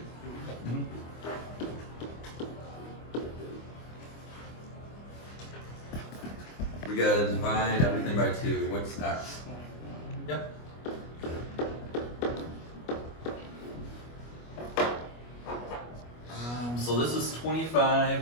Mhm. We gotta divide everything by 2. What's x? Yep. So this is 25.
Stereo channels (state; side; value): late; right; 25 ms